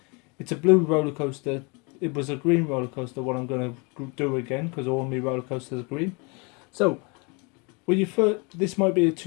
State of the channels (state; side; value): quieter; right; 30.7 dB